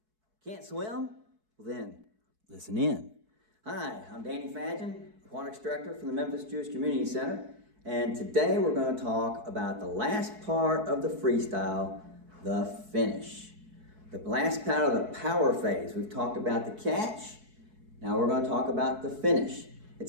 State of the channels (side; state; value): left; late; 4.6 ms